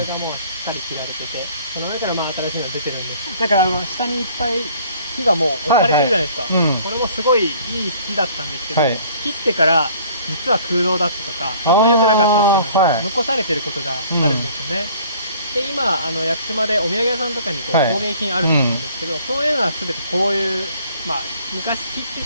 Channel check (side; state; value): both; inverted; correlation -0.55